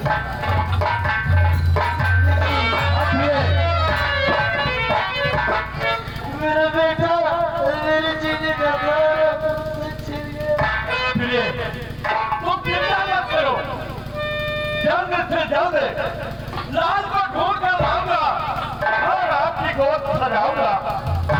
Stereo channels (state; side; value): identical; both; correlation 1.00